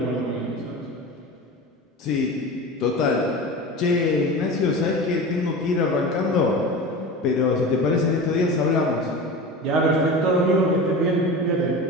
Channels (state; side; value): normal; both; correlation 0.31